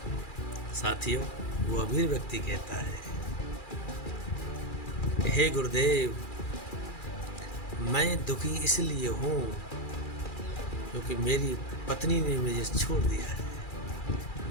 साथियों, वो अमीर व्यक्ति कहता है, हे गुरुदेव, मैं दुखी इसलिए हूँ क्योंकि मेरी पत्नी ने मुझे छोड़ दिया है,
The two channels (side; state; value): right; late; 2.4 ms